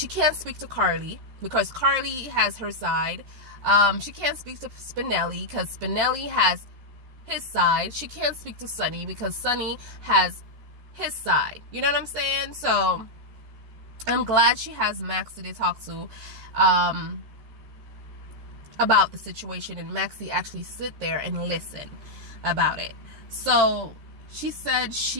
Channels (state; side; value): late; left; 14 ms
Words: can't speak to Carly because Carly has her side. She can't speak to Spinelli because Spinelli has his side. She can't speak to Sonny because Sonny has his side. You know what I'm saying? So I'm glad she has Maxie to talk to about the situation, and Maxie actually sit there and listen about it. So she said